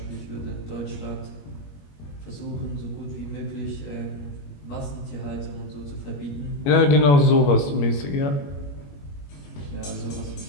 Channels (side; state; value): right; late; 21 ms